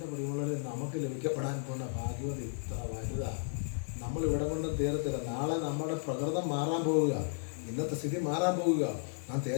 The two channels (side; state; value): right; silent; 55 dB below the other